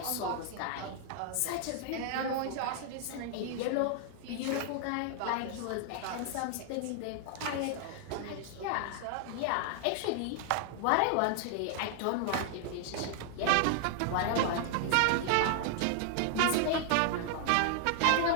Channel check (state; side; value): different; both; correlation 0.00